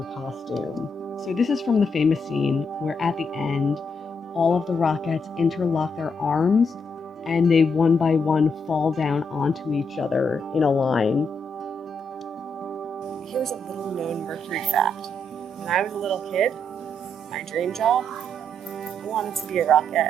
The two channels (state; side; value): normal; both; correlation 0.78